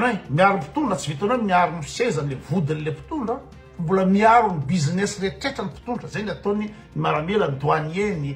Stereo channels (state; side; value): identical; both; correlation 1.00